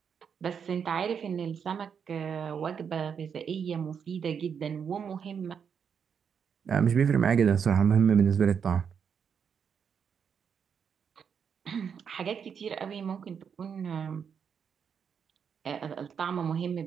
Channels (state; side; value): quieter; left; 7.1 dB